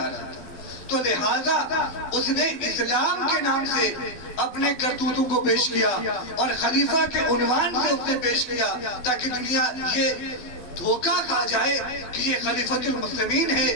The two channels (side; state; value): right; late; 12 ms